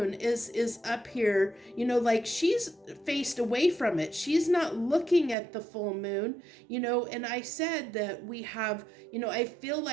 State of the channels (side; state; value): left; drops out; at 5.4 s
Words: is up here, like she's faced away from it. She's not looking at the full moon, and I said that we have, I feel